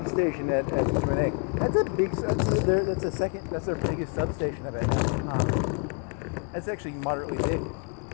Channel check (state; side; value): quieter; right; 39.4 dB